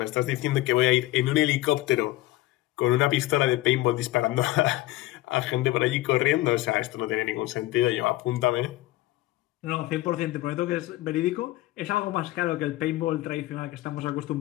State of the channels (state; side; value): quieter; right; 17.3 dB